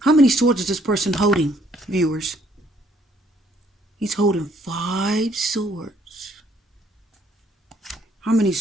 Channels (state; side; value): normal; both; correlation 0.66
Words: How many swords is this person holding, viewers? He's holding 5 swords. How many